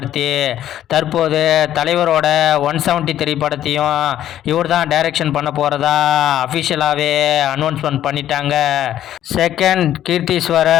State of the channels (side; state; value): right; quieter; 11.8 dB